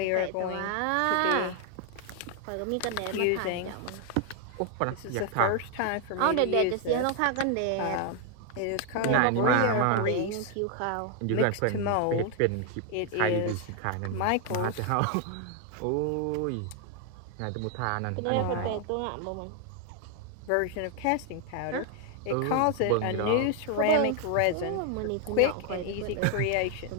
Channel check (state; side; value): different; both; correlation 0.00